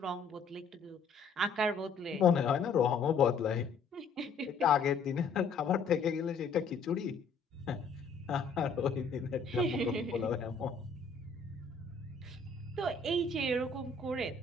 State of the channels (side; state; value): right; quieter; 4.5 dB